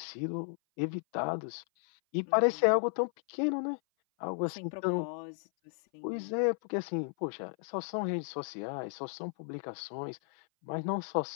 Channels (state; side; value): silent; right; 55 dB below the other